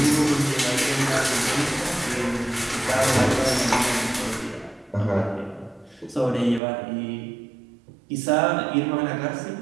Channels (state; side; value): drops out; left; at 6.6 s